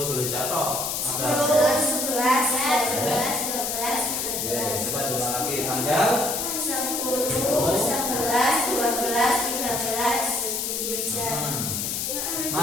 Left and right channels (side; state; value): left; noise; hiss, 1 dB below the sound